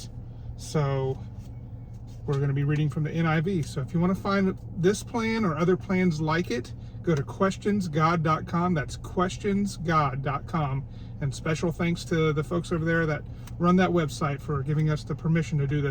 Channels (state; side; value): identical; both; correlation 1.00